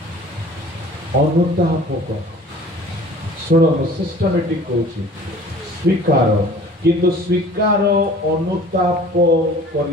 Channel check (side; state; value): both; normal; correlation 0.47